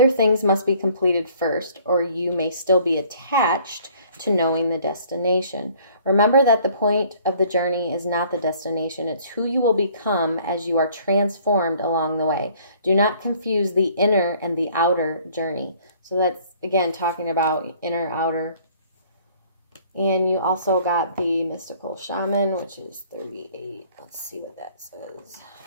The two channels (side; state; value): both; inverted; correlation -0.57